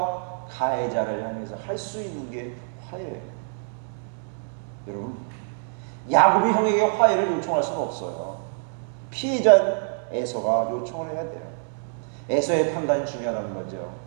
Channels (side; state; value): left; silent; 61 dB below the other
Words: 가해자를 향해서 할 수 있는 게 화해예요. 여러분, 야곱이 형에게 화해를 요청할 수는 없어요. 피해자 에서가 요청을 해야 돼요. 에서의 판단이 중요하다는 거죠.